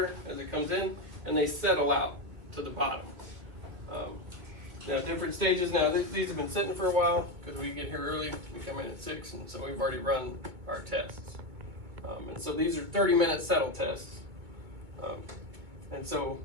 as it comes in, and they settle out to the bottom. Now, different stages. Now, these have been sitting for a while because we get here early. We come in at 6, and so we've already run our tests. And so these are 30-minute settle tests. And so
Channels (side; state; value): left; late; 2.2 ms